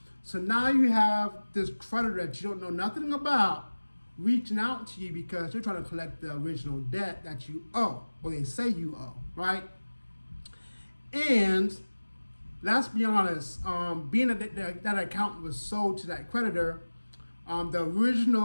So now you have this creditor that you don't know nothing about reaching out to you because they're trying to collect the original debt that you owe, or they say you owe, right? And let's be honest, being that account was sold to that creditor, the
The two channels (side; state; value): both; inverted; correlation -1.00